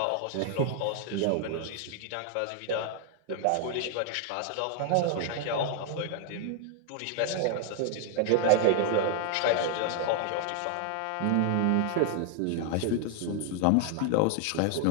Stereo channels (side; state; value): both; different; correlation 0.00